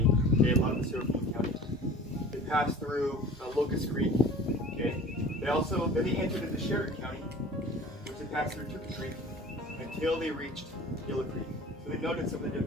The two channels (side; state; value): both; normal; correlation 0.43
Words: Okay, a lot of us are from the county. They passed through Locust Creek. Okay. Then they entered into Sheridan County, which they passed through Tuka Creek until they reached Yellow Creek. So they noted some of the